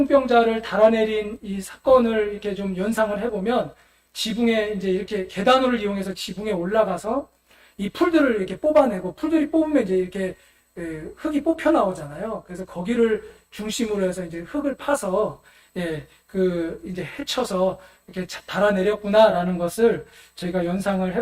달아내린 이 사건을 이렇게 좀 연상을 해보면 지붕에 이제 이렇게 계단을 이용해서 지붕에 올라가서 이 풀들을 이렇게 뽑아내고 풀들이 뽑으면 이제 이렇게 흙이 뽑혀 나오잖아요. 그래서 거기를 중심으로 해서 이제 흙을 파서 이제 헤쳐서 이렇게 달아내렸구나라는 것을 저희가 연상을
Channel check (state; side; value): identical; both; correlation 1.00